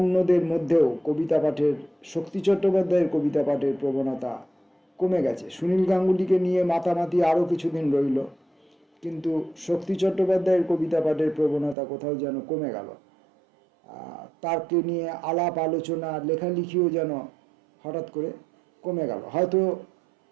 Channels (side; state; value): left; drops out; at 11.8 s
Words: মধ্যেও কবিতা পাঠের, শক্তি চট্টোপাধ্যায়ের কবিতা পাঠের প্রবণতা কমে গেছে। সুনীল গাঙ্গুলিকে নিয়ে মাতামাতি আরও কিছুদিন রইল, কিন্তু শক্তি চট্টোপাধ্যায়ের কবিতা পাঠের প্রবণতা কোথাও যেন কমে গেল। তারকে নিয়ে আলাপ আলোচনা, লেখালেখিও যেন হঠাৎ করে কমে গেল। হয়তো